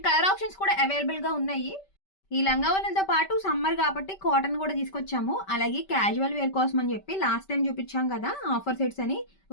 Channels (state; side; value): late; right; 5.2 ms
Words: కలర్ ఆప్షన్స్ కూడా అవైలబుల్ గా ఉన్నాయి. ఈ లంగావోణిలతో పాటు సమ్మర్ కాబట్టి కాటన్ కూడా తీసుకొచ్చాము. అలాగే క్యాజువల్ వేర్ కోసం అని చెప్పి లాస్ట్ టైం చూపించాం కదా ఆఫర్ సెట్స్ అని,